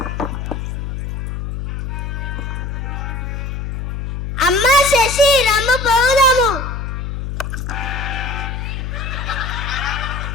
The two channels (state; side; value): noise; left; hum, 4 dB below the sound